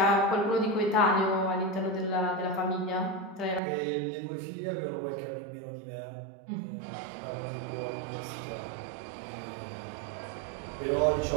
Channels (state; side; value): drops out; left; at 3.6 s